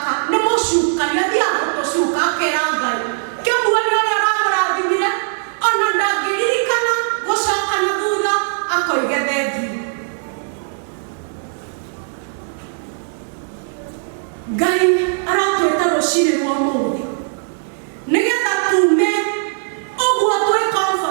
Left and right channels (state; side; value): silent; left; digital silence